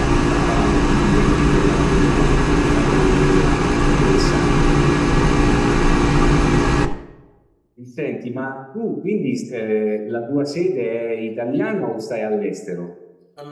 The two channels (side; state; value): both; identical; correlation 1.00